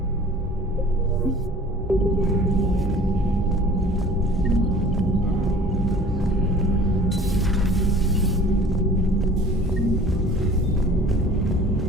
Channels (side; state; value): both; normal; correlation 0.47